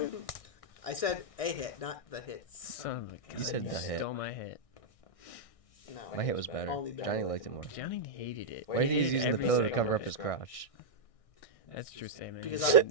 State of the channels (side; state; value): right; late; 1.6 ms